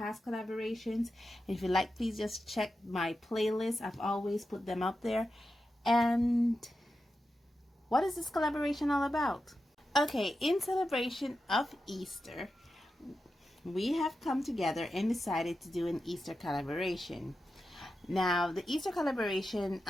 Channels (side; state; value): both; normal; correlation 0.90